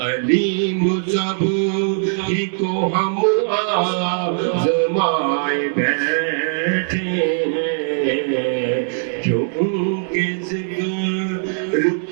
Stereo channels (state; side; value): silent; left; digital silence